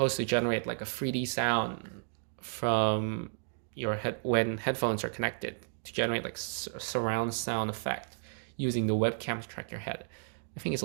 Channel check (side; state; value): left; silent; digital silence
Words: to generate like a 3D sound from your head when headphones are connected to generate like a surround sound effect using the webcam to track your head. I think it's a